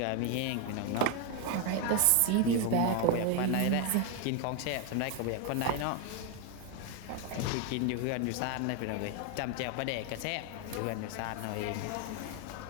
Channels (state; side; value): different; both; correlation 0.01